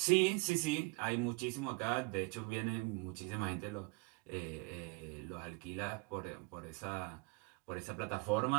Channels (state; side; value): quieter; left; 28.6 dB